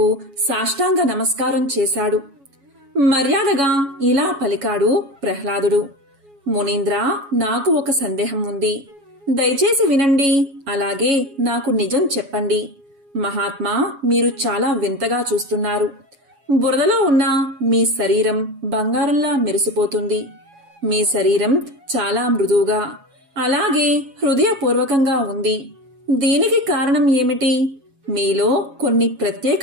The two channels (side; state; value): left; late; 7.2 ms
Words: సాష్టాంగ నమస్కారం చేశాడు. మర్యాదగా ఇలా పలికాడు ప్రహ్లాదుడు, మునీంద్ర, నాకు ఒక సందేహం ఉంది. దయచేసి వినండి, అలాగే నాకు నిజం చెప్పండి. మహాత్మా, మీరు చాలా వింతగా చూస్తున్నారు. బురదలో ఉన్న మీ శరీరం బంగారంలా మెరిసిపోతుంది. మీ శరీరం చాలా మృదువుగా, అలాగే హృదయపూర్వకంగా ఉంది. దీనికి కారణం ఏమిటి? మీలో కొన్ని ప్రత్యేక